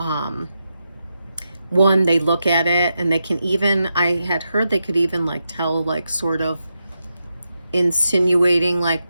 one, they look at it and they can even, I had heard they could even like tell like sort of insinuating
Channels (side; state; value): both; inverted; correlation -0.87